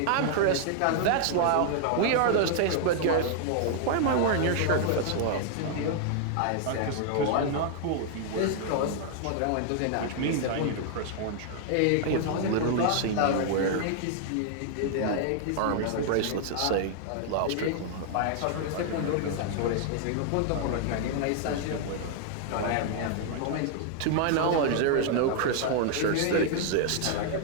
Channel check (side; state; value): both; different; correlation 0.00